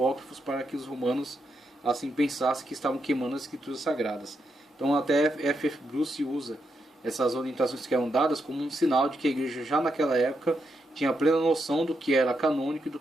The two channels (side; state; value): both; normal; correlation 0.82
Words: para que os romanos assim pensassem que estavam queimando as escrituras sagradas. Então até F.F. Bruce usa essas orientações que eram dadas como um sinal de que a igreja já naquela época tinha plena noção do que era canônico e do